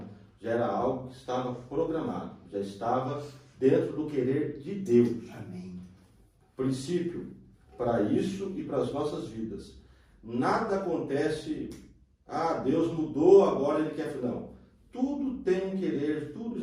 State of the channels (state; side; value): identical; both; correlation 1.00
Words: Já era algo que estava programado, já estava dentro do querer de Deus. Amém. Princípio para isso e para as nossas vidas. Nada acontece, Deus mudou, agora Ele quer... Não. Tudo tem um querer, tudo